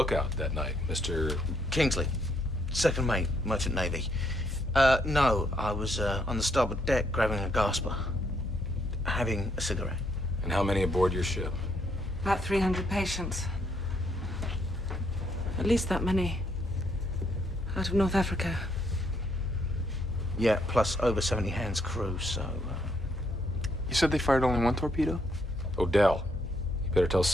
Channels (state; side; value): normal; both; correlation 0.73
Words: that night, Mr. Kingsley, second mate, Merchant Navy. No, I was on the starboard deck grabbing a gasper, having a cigarette. And how many aboard your ship? About 300 patients. At least that many. Out of North Africa. Yeah, plus over 70 hands crew, so... You said they fired only 1 torpedo? Odell, you better tell